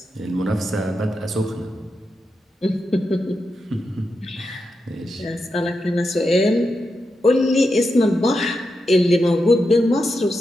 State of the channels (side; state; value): both; normal; correlation 0.87